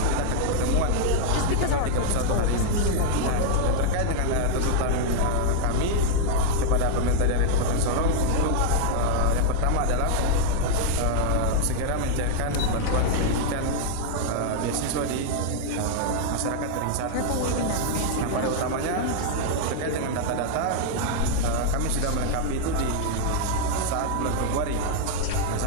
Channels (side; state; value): both; different; correlation 0.00